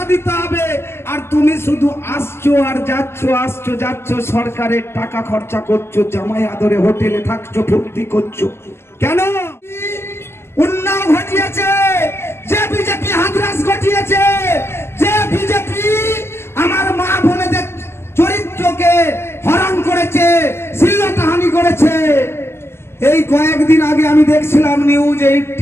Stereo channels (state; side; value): late; right; 0.12 ms